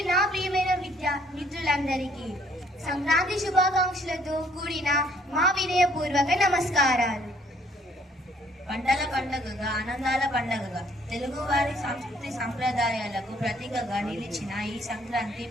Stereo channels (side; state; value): both; normal; correlation 0.63